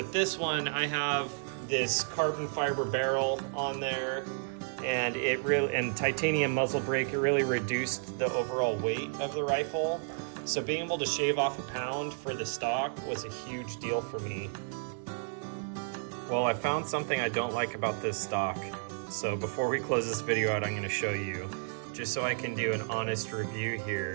this one, I have this carbon fiber barrel on there, and titanium muzzle brake. It really reduced the overall weight of the rifle. So being able to shave off a pound for the stock was a huge deal for me. Well, I found something I don't like about this stock. So before we close this video out, I'm going to show you, just so I can do an honest review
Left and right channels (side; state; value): left; silent; digital silence